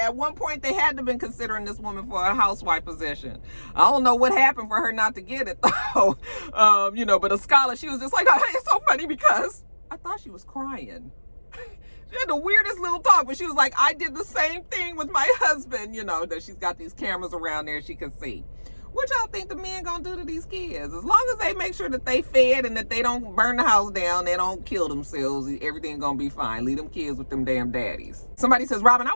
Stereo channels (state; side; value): inverted; both; correlation -1.00